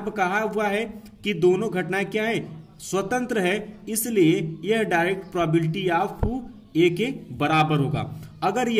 पर कहा हुआ है कि दोनों घटनाएं क्या है स्वतंत्र है, इसलिए यह डायरेक्ट प्रोबेबिलिटी ऑफ ए के बराबर होगा। अगर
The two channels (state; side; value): identical; both; correlation 1.00